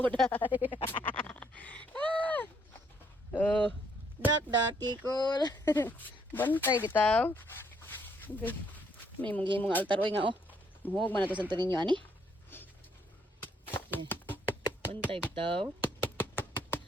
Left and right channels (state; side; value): normal; both; correlation 0.70